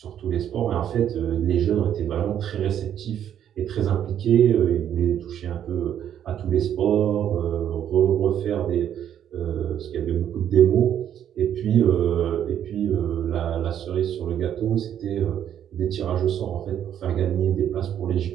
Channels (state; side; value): quieter; left; 10.0 dB